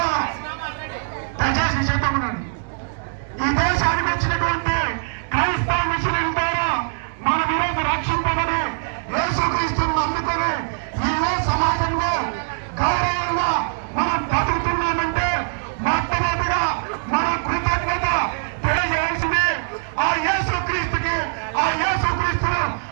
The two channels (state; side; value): silent; left; 64 dB below the other